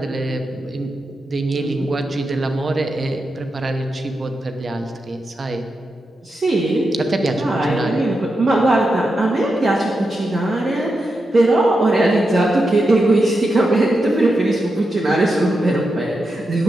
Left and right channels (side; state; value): both; normal; correlation 0.87